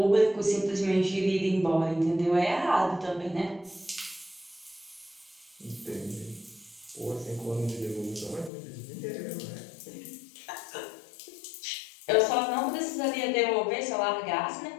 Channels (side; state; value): right; drops out; at 8.5 s